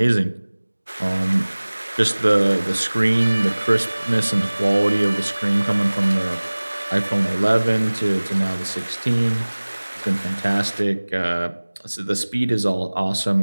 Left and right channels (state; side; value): inverted; both; correlation -1.00